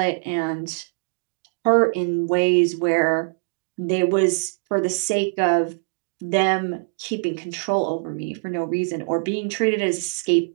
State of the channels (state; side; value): silent; left; digital silence